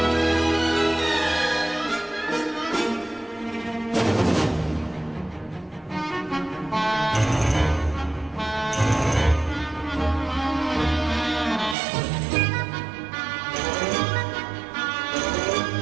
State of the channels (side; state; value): left; drops out; at 11.8 s